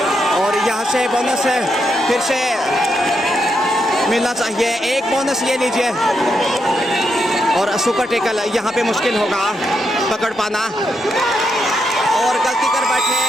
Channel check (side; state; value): both; normal; correlation 0.81